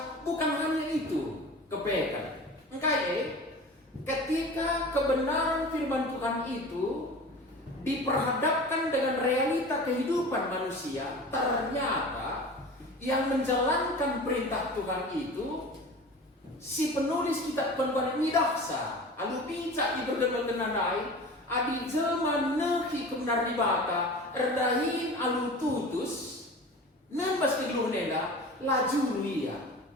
bukan hanya itu. Kepekan. Ketika kebenaran firman Tuhan itu diperhadapkan dengan realita kehidupan manusia, ternyata yang menjalankan perintah Tuhan itu si penulis kitab penuhan midaksa, alu pincak iberdemetenanai, adi jelma nehi kebenar di bata, erdahin alu tutus, nembas kegeluhneda, laju ia.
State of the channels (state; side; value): normal; both; correlation 0.37